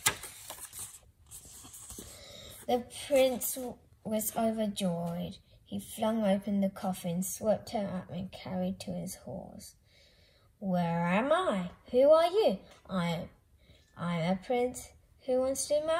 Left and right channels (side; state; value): both; identical; correlation 1.00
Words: The prince was overjoyed. He flung open the coffin, swept her up and carried to his horse. "Where am I? Who are you?" I'm a prince who wants to